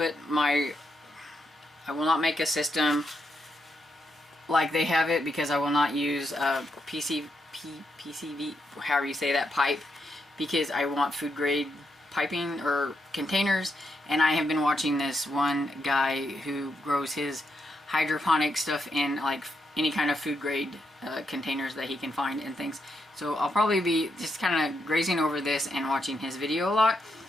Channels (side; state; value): both; normal; correlation 0.81